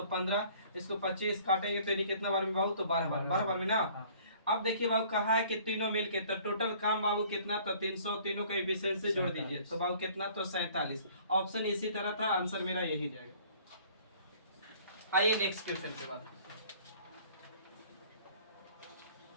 15। इसको 25 काटेंगे तो यानी कितना बार में बाबू? तो 12 बार। 12 बार में ना। अब देखिए बाबू कहा है कि तीनों मिलके, तो टोटल काम बाबू कितना? तो 300। तीनों का एफिशिएंसी जोड़ दीजिए तो बाबू कितना? तो 47। ऑप्शन इसी तरह था, आंसर मेरा यही जाएगा। आइए नेक्स्ट क्वेश्चन के बाद।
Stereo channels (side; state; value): both; inverted; correlation -0.54